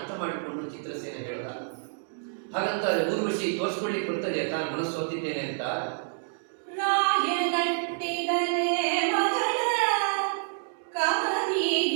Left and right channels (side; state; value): left; silent; digital silence